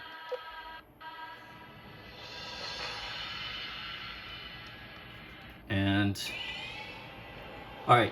And all right.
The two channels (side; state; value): both; identical; correlation 1.00